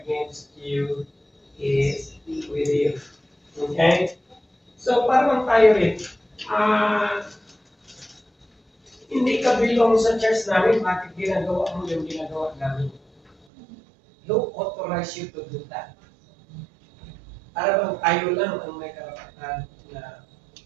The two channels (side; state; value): left; drops out; at 13.3 s